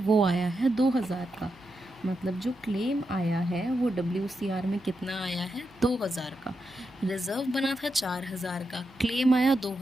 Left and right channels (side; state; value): right; noise; hum, 30 dB below the sound